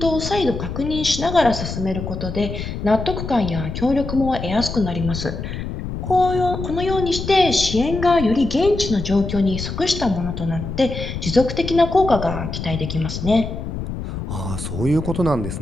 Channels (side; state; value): left; noise; rumble, 6 dB below the sound